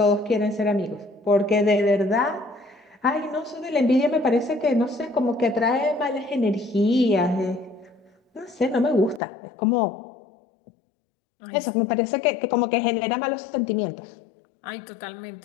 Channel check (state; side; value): drops out; right; at 9.2 s